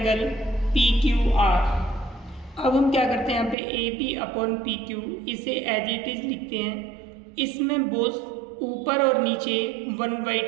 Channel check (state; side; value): drops out; left; at 3.6 s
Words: P Q R. अब हम क्या करते हैं, यहाँ पे A B upon P Q इसे एज इट इज लिखते हैं। इसमें बोथ ऊपर और नीचे